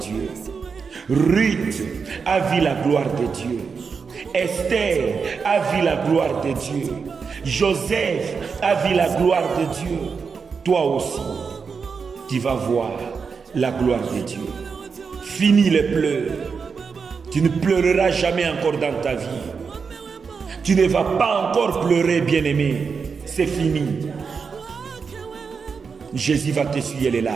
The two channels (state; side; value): quieter; left; 5.5 dB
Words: Ruth a vu la gloire de Dieu. Esther a vu la gloire de Dieu. Joseph a vu la gloire de Dieu. Toi aussi, tu vas voir la gloire de Dieu. Fini les pleurs. Tu ne pleureras jamais encore dans ta vie. Tu ne vas pas encore pleurer, bien-aimé. C'est fini. Jésus va t'essuyer les